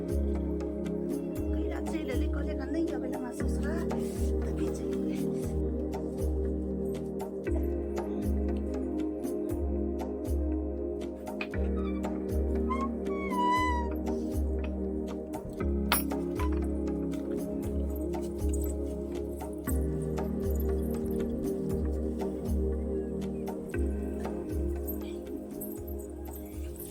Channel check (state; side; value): identical; both; correlation 1.00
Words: कहिया चल ले कहले का नहीं आबै हमरा ससुरा तभी चल ले